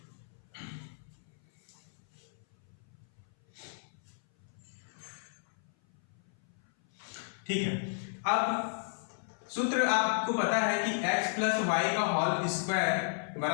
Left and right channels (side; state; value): right; silent; 55 dB below the other